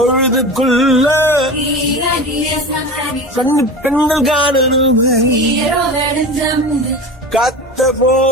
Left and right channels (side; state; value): both; normal; correlation 0.30